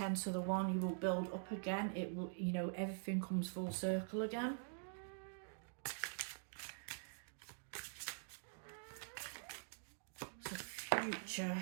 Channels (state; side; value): silent; left; digital silence